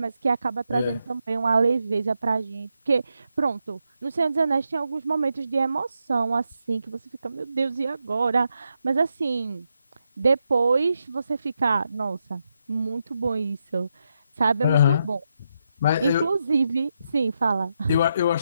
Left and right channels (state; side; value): inverted; both; correlation -0.83